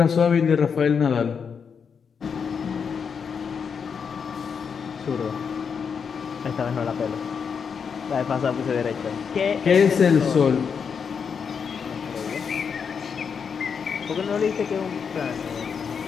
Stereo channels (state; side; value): quieter; right; 6.4 dB